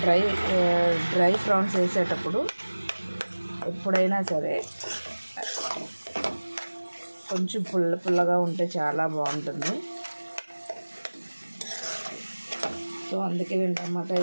డ్రై ప్రాన్స్ వేసేటప్పుడు ఎప్పుడైనా సరే కొంచెం పుల్లగా ఉంటే చాలా బాగుంటుంది. సో అందుకే నేను టమాటా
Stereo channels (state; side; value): inverted; both; correlation -1.00